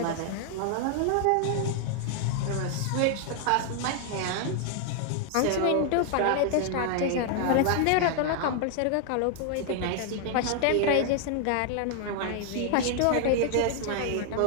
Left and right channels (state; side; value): different; both; correlation 0.00